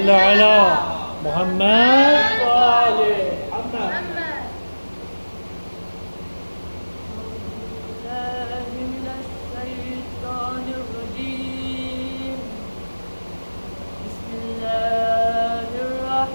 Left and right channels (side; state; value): both; inverted; correlation -1.00